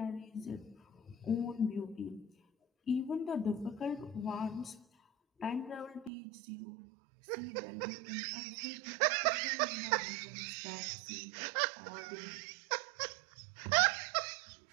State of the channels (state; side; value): drops out; left; at 6.1 s